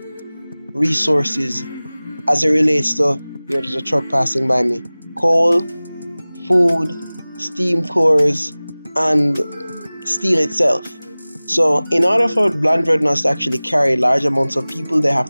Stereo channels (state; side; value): inverted; both; correlation -0.99